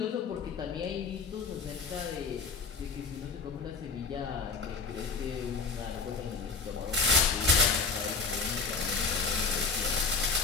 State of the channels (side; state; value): right; quieter; 4.7 dB